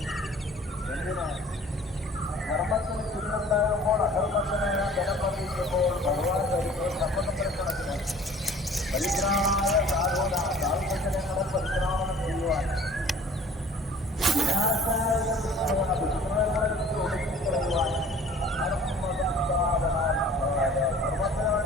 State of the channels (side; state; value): both; normal; correlation 0.50